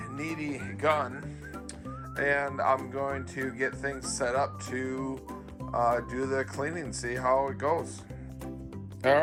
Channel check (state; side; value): identical; both; correlation 1.00